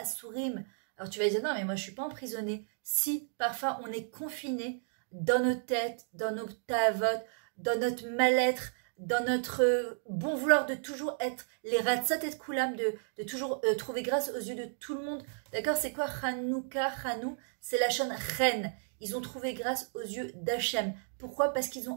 Alors tu vas dire, non, mais moi je ne suis pas emprisonné. Si, parfois, on est confiné dans nos têtes, dans nos tavot, dans notre mal-être, dans notre bon vouloir de toujours être les ratzot et koulam, de toujours trouver grâce aux yeux de tout le monde. D'accord? C'est quoi Hanouka, Hanou? C'est la chaîne reine. Ils ont trouvé grâce aux yeux d'Hachem. Pourquoi? Parce qu'ils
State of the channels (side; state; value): left; silent; digital silence